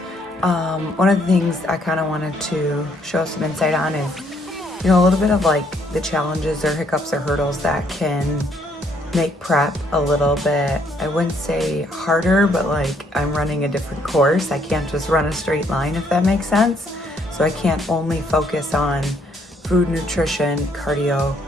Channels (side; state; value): both; normal; correlation 0.69